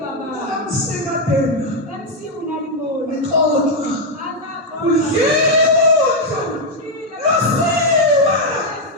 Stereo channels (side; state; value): both; normal; correlation 0.01